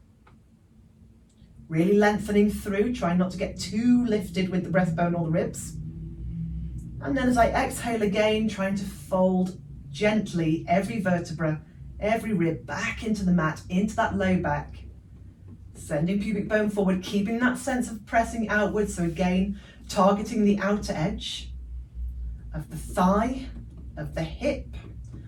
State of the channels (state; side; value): identical; both; correlation 1.00